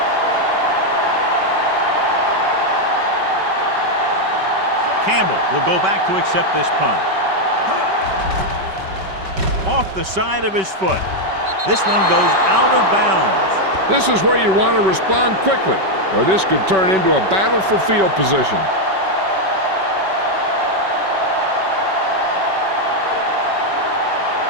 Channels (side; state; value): left; late; 5.2 ms